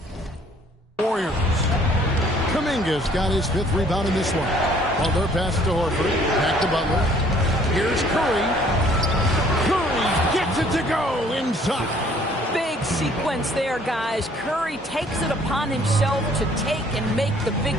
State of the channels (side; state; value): both; normal; correlation 0.59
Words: Warriors. Kuminga's got his 5th rebound in this one. Butler passes to Horford, back to Butler. Here's Curry. Curry gets it to go inside. Big sequence there, guys. Curry takes it upon himself to take and make the big